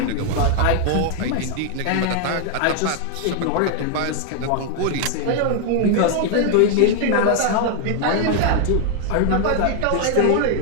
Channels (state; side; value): different; both; correlation 0.00